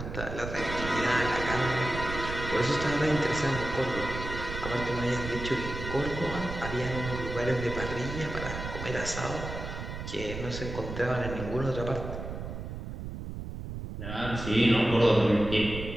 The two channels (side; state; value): right; noise; rumble, 7 dB below the sound